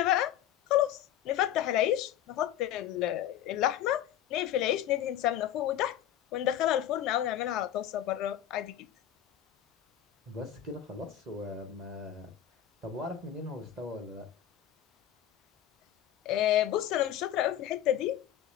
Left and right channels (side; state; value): right; quieter; 11.5 dB